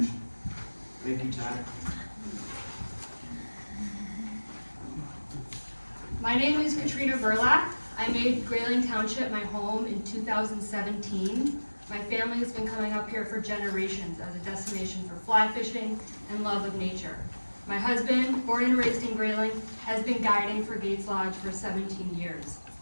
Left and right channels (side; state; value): both; inverted; correlation -1.00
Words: Thank you, Todd. My name is Katrina Burlak. I made Grayling Township my home in 2017. My family has been coming up here for generations as a destination for fly fishing and love of nature. My husband, born and raised in Grayling, has been guiding for Gates Lodge for 17 years.